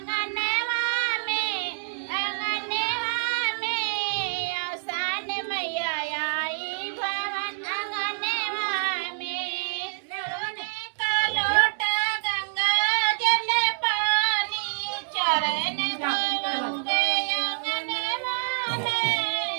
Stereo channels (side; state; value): left; silent; digital silence